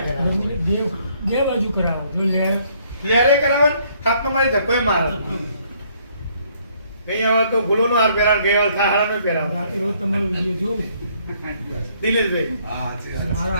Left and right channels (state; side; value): inverted; both; correlation -0.65